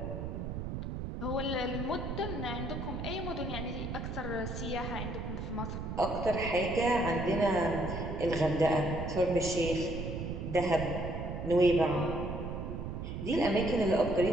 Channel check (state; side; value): noise; right; rumble, 5 dB below the sound